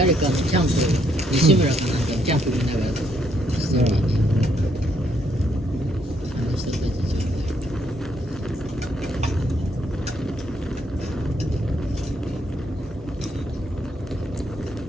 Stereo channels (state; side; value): normal; both; correlation 0.73